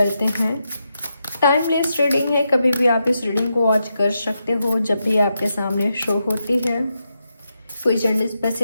हैं। टाइमलेस रीडिंग है, कभी भी आप इस रीडिंग को वॉच कर सकते हो जब भी आपके सामने शो होती है। कोई जेंडर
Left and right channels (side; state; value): both; inverted; correlation -0.85